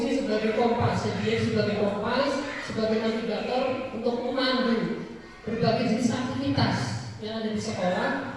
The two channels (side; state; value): both; identical; correlation 1.00